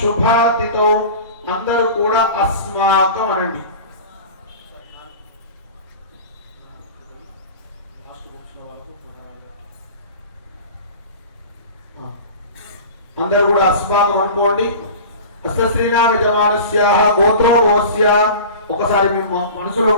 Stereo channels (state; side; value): inverted; both; correlation -0.36